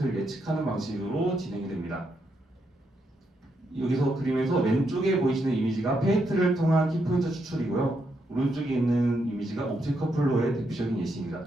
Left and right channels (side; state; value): both; normal; correlation 0.80